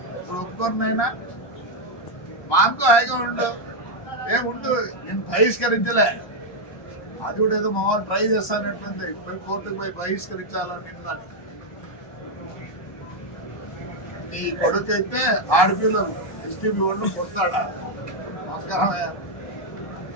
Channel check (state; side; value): late; right; 1.2 ms